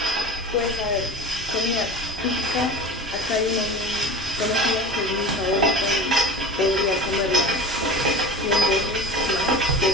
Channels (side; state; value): both; normal; correlation 0.36